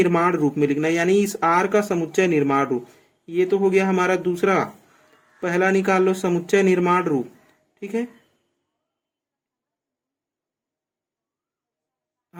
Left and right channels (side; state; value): both; identical; correlation 1.00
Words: रूप में लिखना, यानी इस आर का समुच्चय निर्माण रूप। ये तो हो गया हमारा दूसरा, पहला निकाल लो समुच्चय निर्माण रूप। ठीक है,